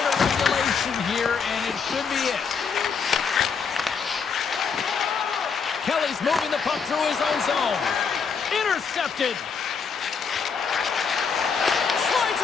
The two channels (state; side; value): quieter; right; 5.9 dB